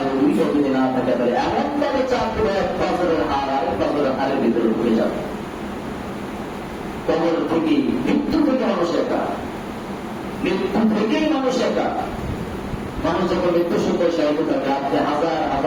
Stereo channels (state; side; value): identical; both; correlation 1.00